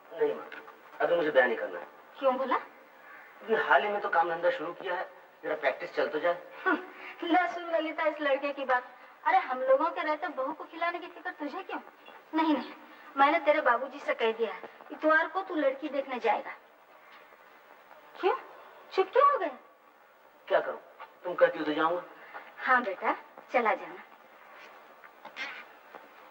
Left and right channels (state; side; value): identical; both; correlation 1.00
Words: नहीं माँ, अभी मुझे ब्याह नहीं करना है। क्यों बोला? अभी हाल ही में तो काम धंधा शुरू किया है, जरा प्रैक्टिस चल तो जाए। ले सुन ललिता इस लड़के की बात। अरे हम लोगों के रहते बहू को खिलाने की फिक्र तुझे क्यों? नहीं नहीं, मैंने तेरे बाबूजी से कह दिया है, इतवार को तू लड़की देखने जाएगा। क्यों, चुप क्यों हो गए? क्या करूं, तुम कहती हो तो जाऊंगा। हाँ बेटा, चला जाना।